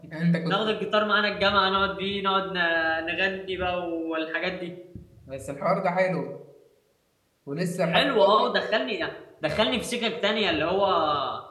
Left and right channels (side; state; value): both; identical; correlation 1.00